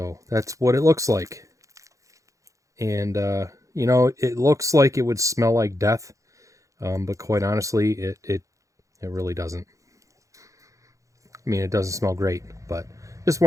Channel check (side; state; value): left; late; 0.15 ms